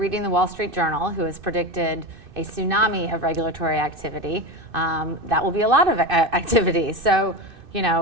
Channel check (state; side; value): late; left; 2.6 ms